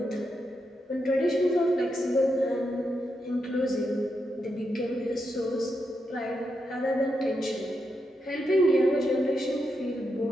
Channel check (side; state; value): both; normal; correlation 0.84